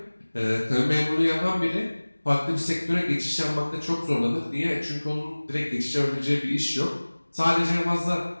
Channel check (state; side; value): inverted; both; correlation -1.00